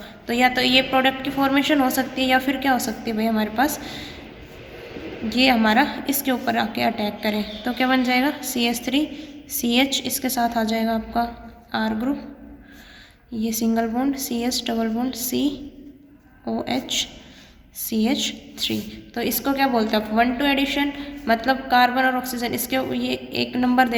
तो या तो ये प्रोडक्ट की फॉर्मेशन हो सकती है या फिर क्या हो सकती है भाई, हमारे पास ये हमारा इसके ऊपर आके अटैक करें, तो क्या बन जाएगा, CH3 CH, इसके साथ आ जाएगा आपका R ग्रुप, ये single bond CH double bond COH CH3। तो इसको क्या बोलते हैं आप, 1-2 एडिशन, मतलब कार्बन और ऑक्सीजन इसके ये एक नंबर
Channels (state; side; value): identical; both; correlation 1.00